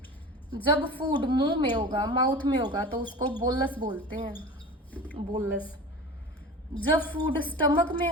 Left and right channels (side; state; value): both; normal; correlation 0.35